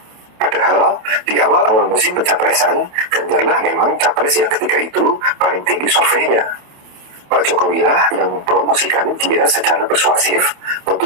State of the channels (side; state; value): left; late; 27 ms